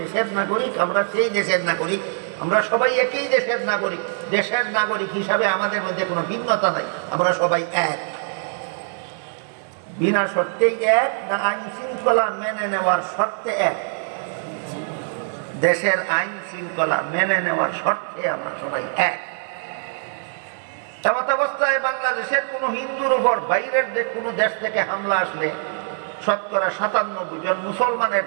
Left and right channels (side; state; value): left; silent; digital silence